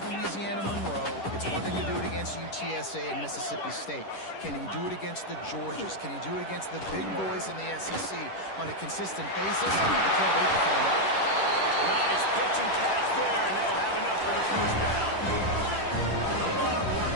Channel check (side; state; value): right; late; 10 ms